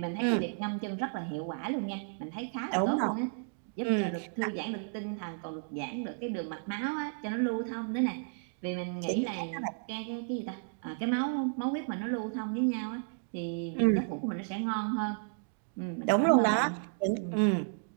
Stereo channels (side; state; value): left; silent; digital silence